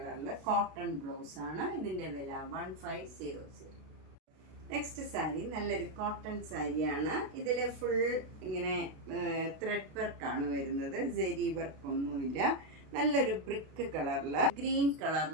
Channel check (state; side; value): late; left; 32 ms